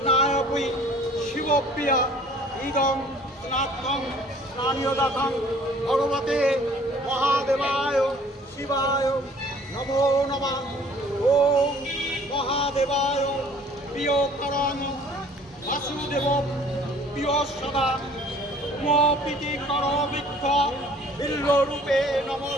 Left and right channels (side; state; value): both; normal; correlation 0.53